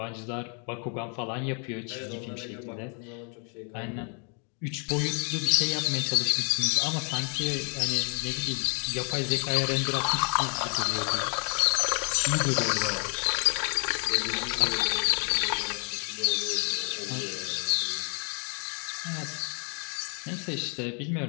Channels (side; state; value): right; quieter; 39.9 dB